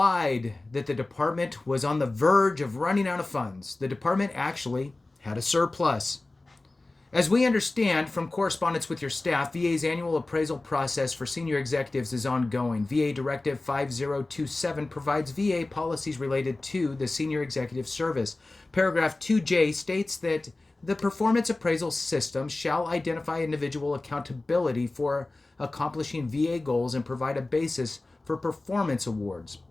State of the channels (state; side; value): quieter; right; 3.0 dB